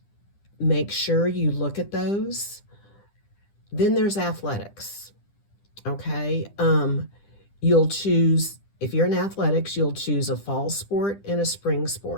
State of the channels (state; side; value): late; right; 10 ms